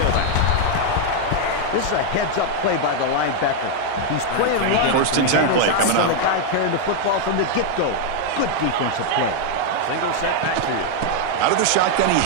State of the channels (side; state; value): both; different; correlation 0.00